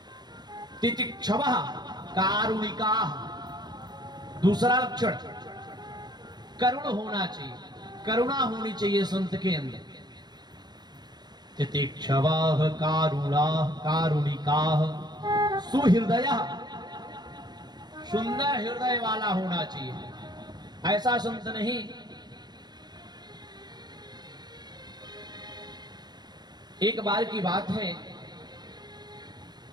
तितिक्षवः कारुणिकाः। दूसरा लक्षण करुण होना चाहिए, करुणा होनी चाहिए संत के अंदर। तितिक्षवाः कारुणाः कारुणिकाः सुहृदयः। सुंदर हृदय वाला होना चाहिए। ऐसा संत नहीं एक बार की बात है,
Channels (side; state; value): left; late; 0.20 ms